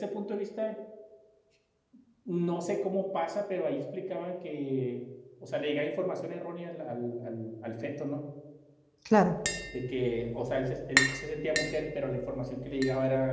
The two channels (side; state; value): both; identical; correlation 1.00